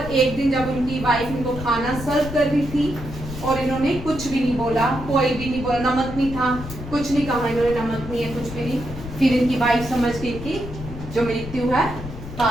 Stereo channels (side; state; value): left; noise; rumble, 10 dB below the sound